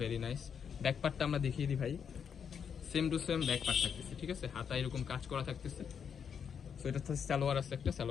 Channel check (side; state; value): right; quieter; 7.3 dB